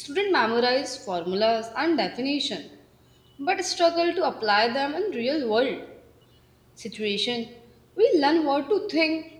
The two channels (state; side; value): identical; both; correlation 1.00